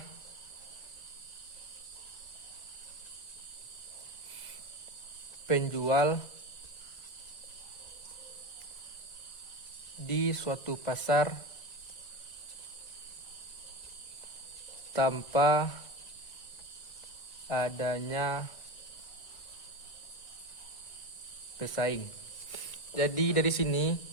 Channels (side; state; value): right; late; 1.9 ms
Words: penjual di suatu pasar tanpa adanya pesaing. Jadi dari sini